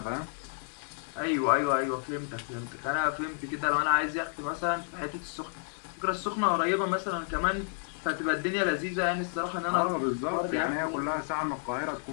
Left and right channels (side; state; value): right; silent; 55 dB below the other